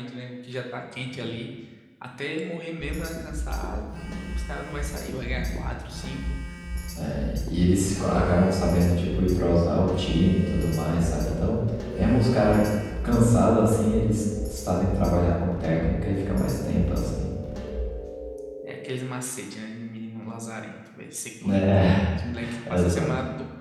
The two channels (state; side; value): identical; both; correlation 1.00